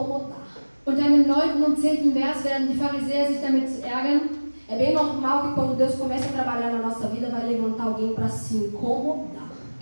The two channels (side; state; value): both; inverted; correlation -1.00